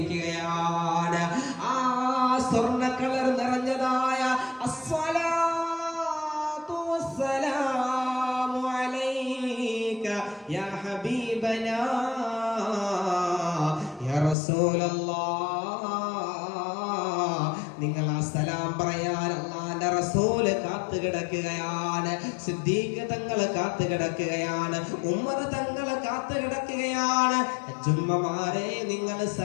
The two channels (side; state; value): right; drops out; at 14.4 s